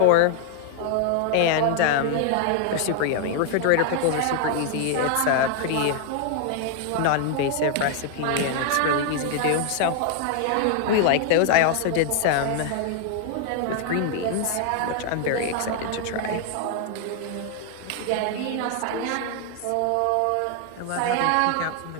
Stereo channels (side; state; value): both; different; correlation 0.00